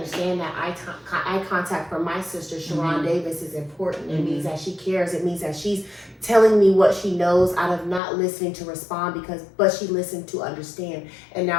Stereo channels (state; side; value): drops out; right; at 8.0 s